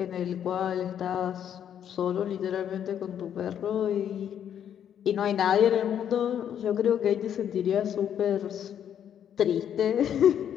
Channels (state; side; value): quieter; right; 9.3 dB